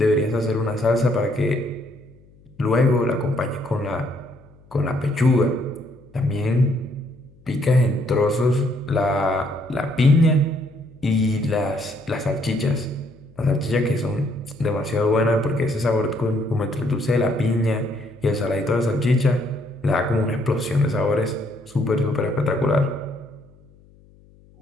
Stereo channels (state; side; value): noise; left; hum, 28 dB below the sound